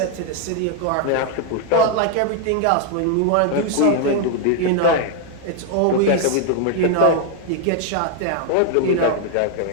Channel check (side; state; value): both; different; correlation 0.00